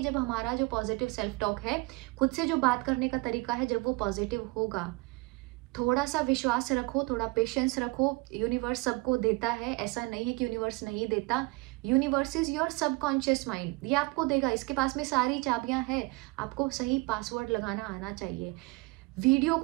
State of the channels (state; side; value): quieter; left; 24.9 dB